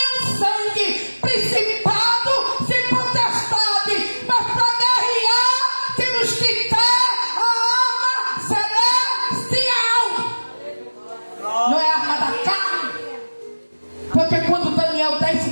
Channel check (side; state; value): both; inverted; correlation -1.00